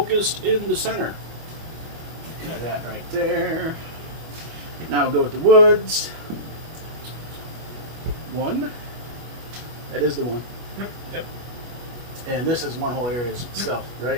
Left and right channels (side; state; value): left; late; 25 ms